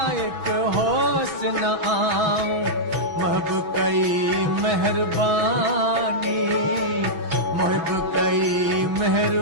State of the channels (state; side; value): late; left; 6.1 ms